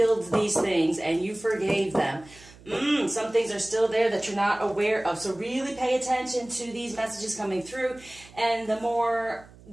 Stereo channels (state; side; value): noise; right; hum, 23 dB below the sound